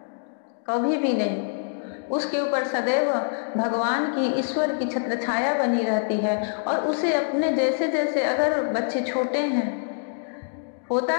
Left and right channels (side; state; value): right; silent; digital silence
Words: कभी भी नहीं। उसके ऊपर सदैव भगवान की, ईश्वर की छत्र छाया बनी रहती है। और उसे अपने जैसे जैसे, अगर बच्चे छोटे हैं, होता